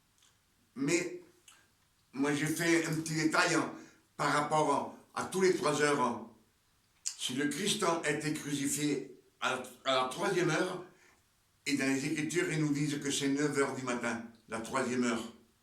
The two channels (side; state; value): both; identical; correlation 1.00